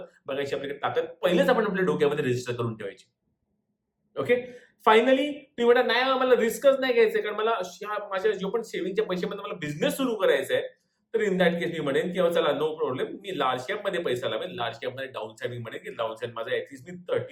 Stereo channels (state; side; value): identical; both; correlation 1.00